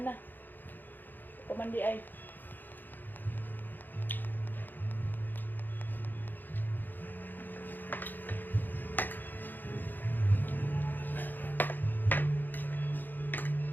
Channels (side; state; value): right; late; 0.089 ms